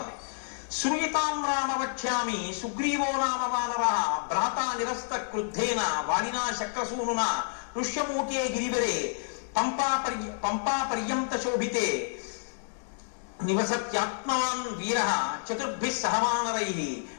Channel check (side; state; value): right; silent; digital silence